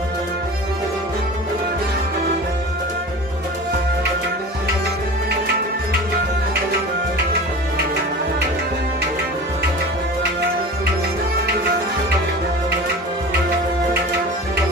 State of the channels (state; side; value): normal; both; correlation 0.36